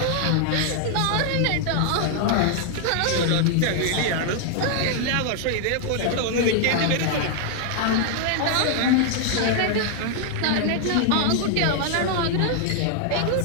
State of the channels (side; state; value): both; different; correlation 0.00